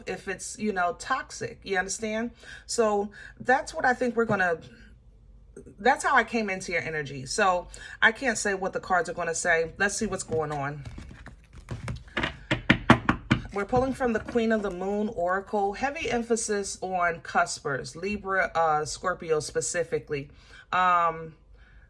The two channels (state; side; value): identical; both; correlation 1.00